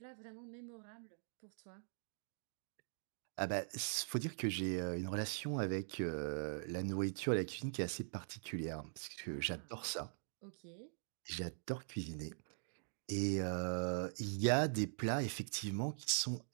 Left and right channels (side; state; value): left; silent; digital silence